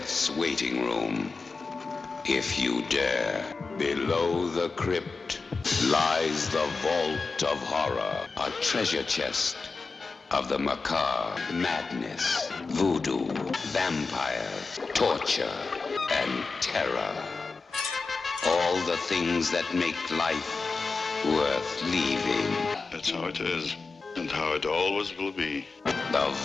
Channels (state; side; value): quieter; right; 4.2 dB